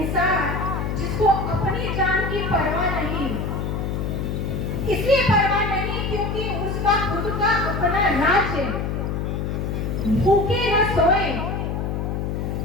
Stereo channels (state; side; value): noise; left; hum, 2 dB below the sound